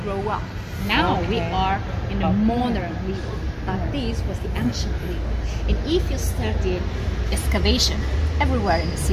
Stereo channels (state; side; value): identical; both; correlation 1.00